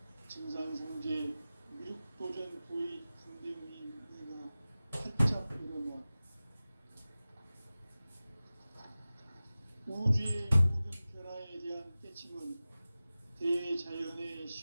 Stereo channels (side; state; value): both; inverted; correlation -0.97